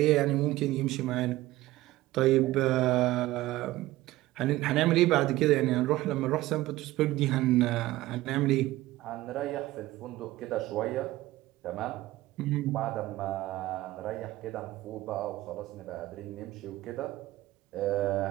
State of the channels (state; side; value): quieter; left; 17.1 dB